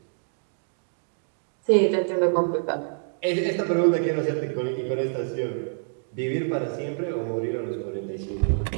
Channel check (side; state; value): left; silent; digital silence